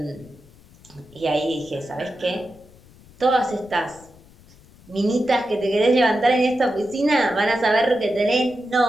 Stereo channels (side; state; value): left; noise; rumble, 25 dB below the sound